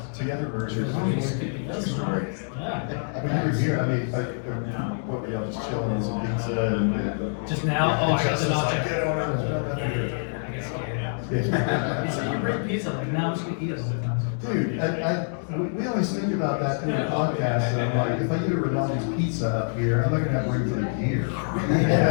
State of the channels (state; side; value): silent; right; digital silence